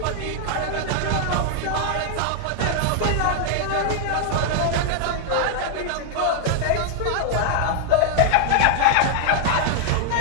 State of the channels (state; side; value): different; both; correlation 0.00